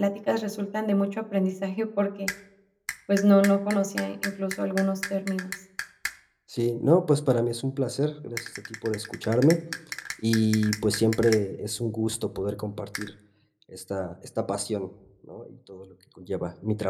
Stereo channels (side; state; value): both; identical; correlation 1.00